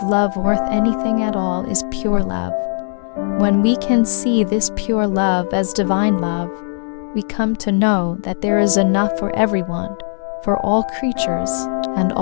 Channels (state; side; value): silent; right; 67 dB below the other